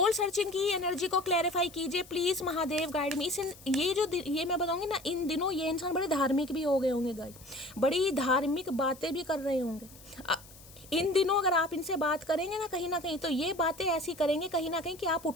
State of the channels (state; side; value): noise; left; hiss, 21 dB below the sound